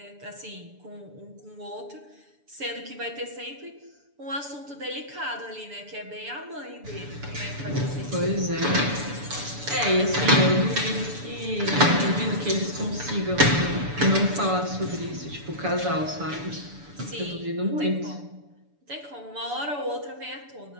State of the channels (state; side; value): late; left; 6.9 ms